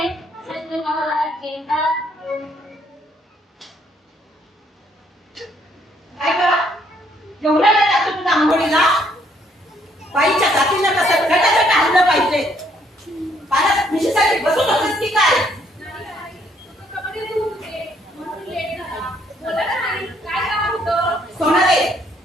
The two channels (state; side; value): normal; both; correlation 0.68